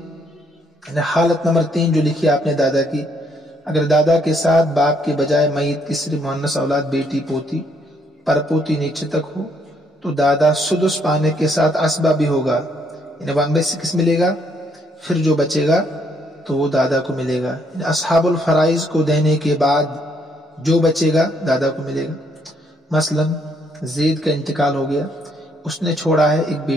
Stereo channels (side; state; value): both; normal; correlation 0.70